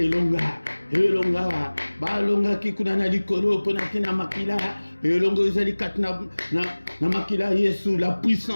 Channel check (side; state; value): both; inverted; correlation -1.00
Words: balonga kikunana likolo pona kina makila, elongo ezali katna na makila Yesu, la